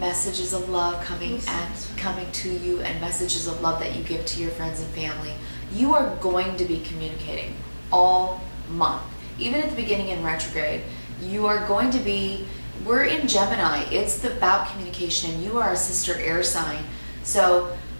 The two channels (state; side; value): inverted; both; correlation -1.00